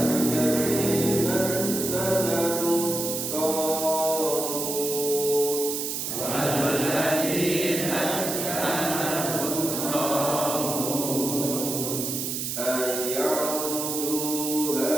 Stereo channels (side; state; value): right; noise; hiss, 3 dB below the sound